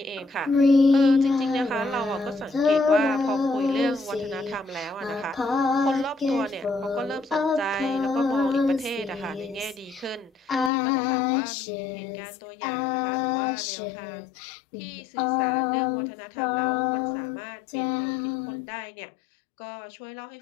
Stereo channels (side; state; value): right; drops out; at 10.7 s